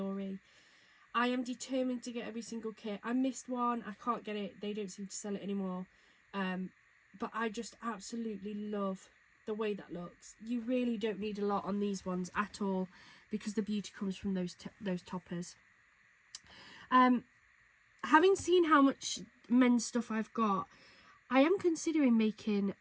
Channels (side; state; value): both; identical; correlation 1.00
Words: I am determined to get every single kit. I missed one. I can't get it. They don't seem to sell it anymore. But I just absolutely love the way that looks. You really don't need a lot on these ones at all, because the beauty comes from those toppers. Having seen how much men's stuff I've got, I am considering making